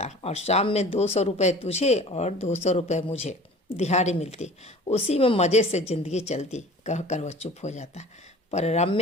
और शाम में 200 रुपये तुझे और 200 रुपये मुझे दिहाड़ी मिलती। उसी में मज़े से ज़िंदगी चलती, कहकर वह चुप हो जाता। पर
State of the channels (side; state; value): both; normal; correlation 0.44